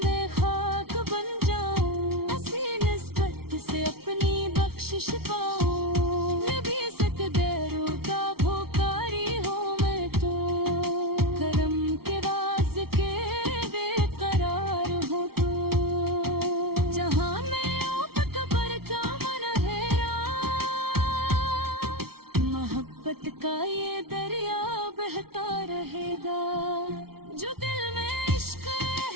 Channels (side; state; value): left; late; 0.94 ms